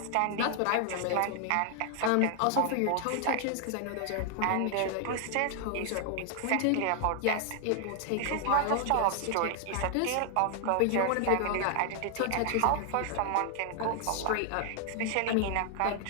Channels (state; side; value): different; both; correlation 0.00